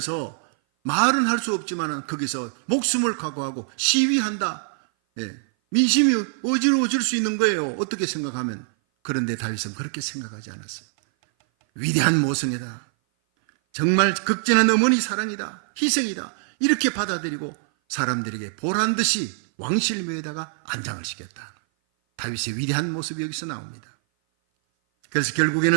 말은 할 수 없지만 거기서 목숨을 각오하고 시위한다. 민심이 어지러워질 수 있는 거예요. 어떻게 생각하면. 그런데 다윗은 그렇게 생각하지 않았어요. 위대한 모성애다, 정말 극진한 어머니 사랑이다, 희생이다, 이렇게 받아들이고 사람들에게 보란듯이 왕실묘에다가 안장을 시켰다. 다윗의 위대한 모습이 여기서 나옵니다. 그래서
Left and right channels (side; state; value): left; silent; 57 dB below the other